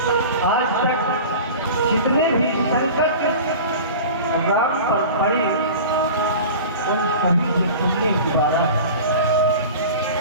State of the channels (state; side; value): inverted; both; correlation -0.36